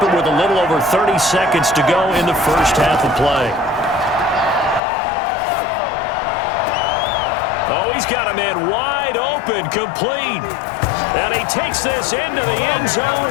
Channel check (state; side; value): drops out; right; at 4.8 s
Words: it with a little over 30 seconds to go in the first half of play. he's got a man wide open, complete. And he takes this into the end